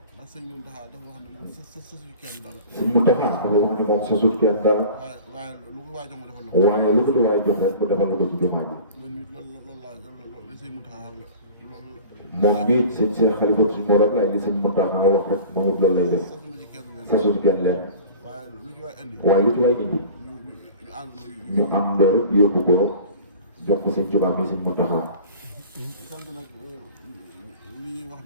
ndax Sëriñ Muntaxa dafa wax ne moom sa suñu kenn dara sëñ Mountakha dafa wax ne moom sasut kenn dara waaye lu ko waay jox ma defal la ko waaye lu ko di waay jox rek mu defal ko ci jumaa ji man nit loolu laa Sëriñ Muntaxa wax la moom mii sëñ Cheikh Khalifa suñu morom la ak li sëñ Mountakha wax rek moom it loolu lay def sasu ci kenn leen waaye lu ci waay indi ñu am loolu rek yóbbu ko jox ko sëñ Tuubaa mi sëñ Mountakha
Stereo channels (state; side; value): inverted; both; correlation -0.41